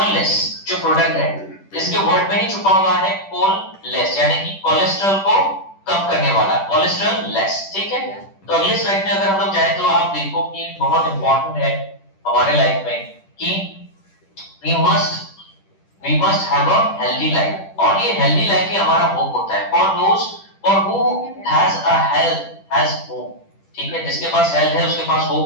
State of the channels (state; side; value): late; right; 10 ms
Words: जो प्रोडक्ट है इसके वर्ड में ही छुपा हुआ है कोललेस, यानी कि कोलेस्ट्रॉल को कम करने वाला, कोलेस्ट्रॉल लेस। ठीक है, तो अगले स्लाइड में अगर हम लोग जाए तो आप देखो कि बहुत इंपॉर्टेंट है हमारे लाइफ में कि we must have a healthy life, और ये healthy life ही हमारा होप होता है। for who has a health has hope। ठीक है, जिसके पास हेल्थ है उसके पास